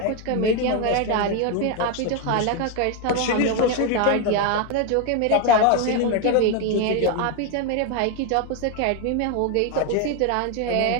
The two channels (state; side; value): different; both; correlation 0.01